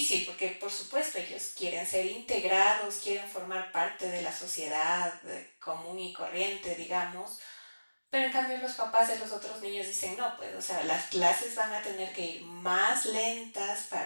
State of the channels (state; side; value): inverted; both; correlation -1.00